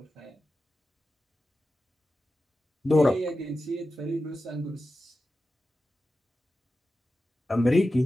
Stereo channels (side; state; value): both; normal; correlation 0.92